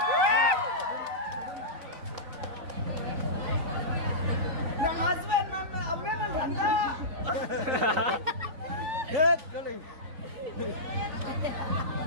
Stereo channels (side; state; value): left; late; 3.9 ms